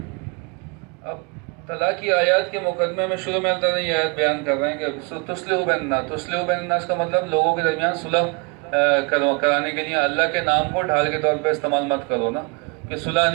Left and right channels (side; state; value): left; quieter; 29.9 dB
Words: اب طلاق کی آیات کے مقدمے میں شروع میں اللہ تعالیٰ یہ آیت بیان کر رہے ہیں کہ تصلحوا بین الناس. تصلحوا بین الناس کا مطلب لوگوں کے درمیان صلح کرانے کے لیے اللہ کے نام کو ڈھال کے طور پہ استعمال مت کرو نا کہ صلح